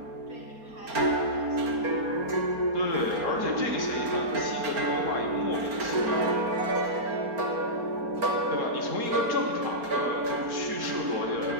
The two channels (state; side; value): late; left; 4.3 ms